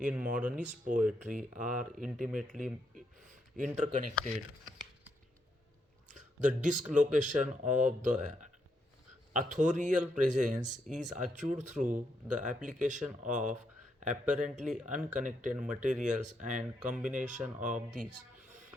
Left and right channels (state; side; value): normal; both; correlation 0.78